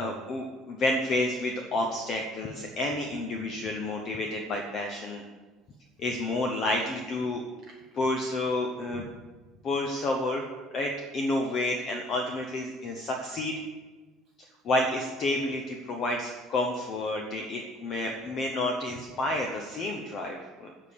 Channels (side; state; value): both; normal; correlation 0.57